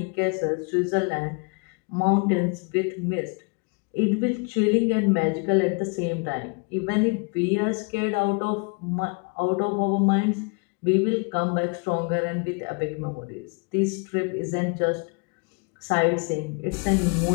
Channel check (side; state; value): right; quieter; 33.4 dB